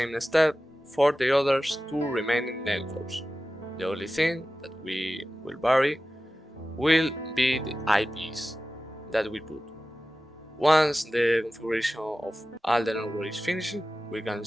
step for the others two remaining networks. The only thing that we will vary will be the IPs that we put. Once the configuration of all the networks is finished, we can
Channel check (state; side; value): normal; both; correlation 0.94